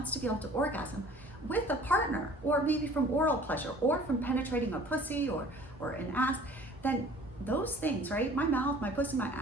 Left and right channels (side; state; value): both; normal; correlation 0.49